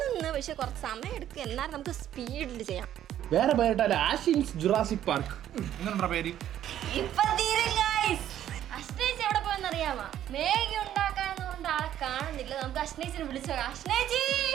പക്ഷെ കുറച്ച് സമയം എടുക്കും. എന്നാലും നമുക്ക് സ്പീഡിൽ ചെയ്യാം. വേറെ പേരിട്ടാല് ആഷിൻസ് ജുറാസിക് പാർക്ക് എങ്ങനെയുണ്ടാ പേര്? ഇപ്പൊ തീരും guys. അശ്നേച്ചി എവിടെ പോയെന്നറിയാമോ? മേഗി ഉണ്ടാക്കാന്ന് കൊണ്ട് ആളെ കാണുന്നില്ല. നമുക്ക് അശ്നേച്ചിനെ വിളിച്ചോ. അശ്നേച്ചി,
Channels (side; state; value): left; quieter; 11.4 dB